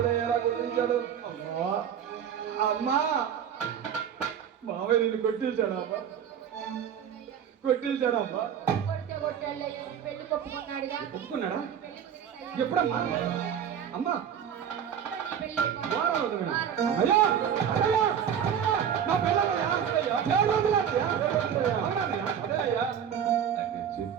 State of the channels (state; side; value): quieter; left; 8.5 dB